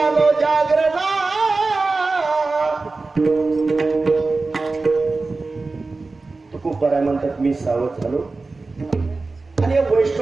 जागरणा. तुकोबाराय म्हणतात मी सावध झालो आणि या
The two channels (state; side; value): quieter; left; 3.7 dB